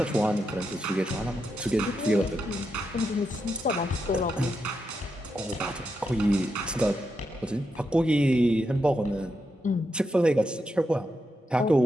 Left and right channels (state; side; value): normal; both; correlation 0.84